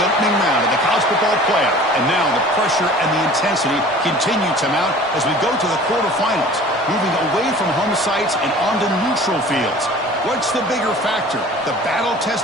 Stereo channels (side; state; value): both; normal; correlation 0.45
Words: opening round of the college football playoff, and now the pressure and the intensity continue to mount as we go to the quarterfinals, moving away from home sites and onto neutral fields. What's the bigger factor, the